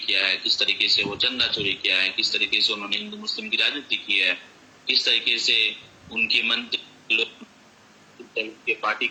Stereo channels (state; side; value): identical; both; correlation 1.00